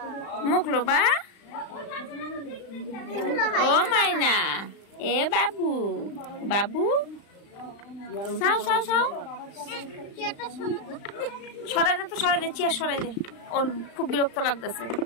মুখলো বা। ও মাইনা, এ বাবু বাবু, সাও সাও সাও, সরাই দে তো, সরাই দে, চেয়ার সরাই দে, ওর খুব বিরক্ত লাগতেছে।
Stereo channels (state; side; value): late; right; 35 ms